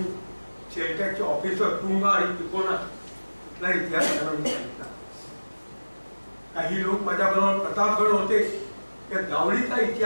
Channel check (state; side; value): inverted; both; correlation -1.00